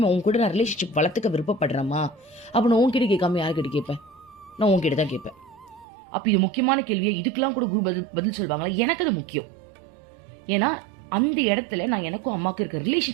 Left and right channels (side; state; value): left; drops out; at 5.9 s